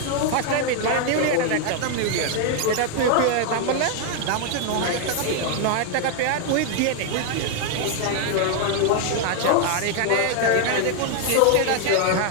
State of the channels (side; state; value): both; different; correlation 0.00